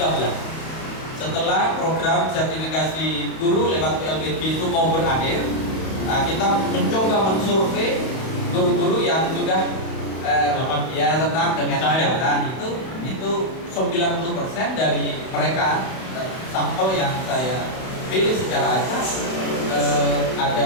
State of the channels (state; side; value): late; right; 31 ms